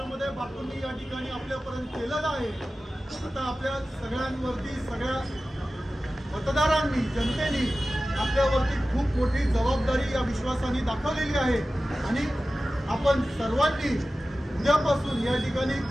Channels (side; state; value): both; normal; correlation 0.95